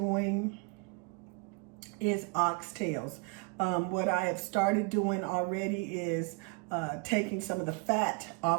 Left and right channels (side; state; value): left; quieter; 31.2 dB